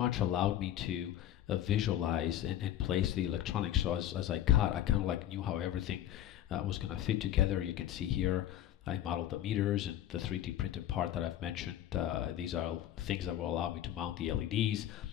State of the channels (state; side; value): quieter; right; 11.9 dB